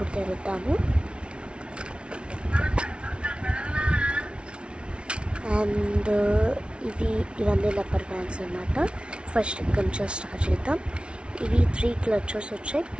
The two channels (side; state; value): left; late; 0.058 ms